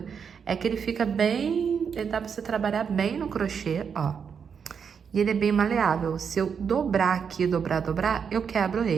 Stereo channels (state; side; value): quieter; left; 6.7 dB